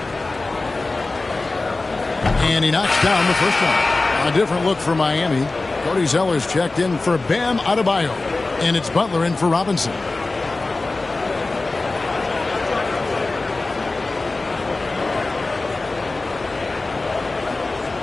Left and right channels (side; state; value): right; quieter; 3.3 dB